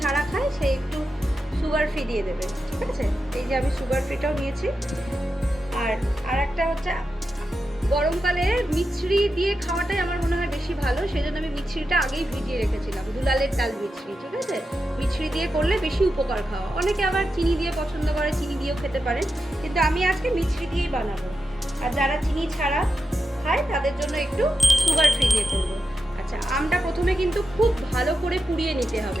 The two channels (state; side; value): normal; both; correlation 0.89